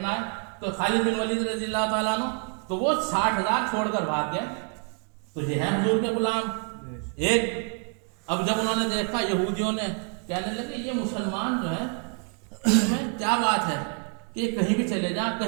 ہے. تو خالد بن ولید رضی اللہ تعالیٰ عنہ تو وہ 60,000 چھوڑ کر بھاگ گئے. تو یہ ہے حضور کے غلام. ایک اب جب انہوں نے دیکھا یہودیوں نے کہنے لگے یہ مسلمان جو ہے میں کیا بات ہے کہ کہیں بھی چلے جائیں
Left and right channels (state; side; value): quieter; left; 39.3 dB